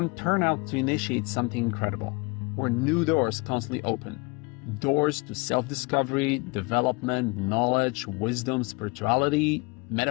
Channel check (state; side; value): quieter; right; 27.9 dB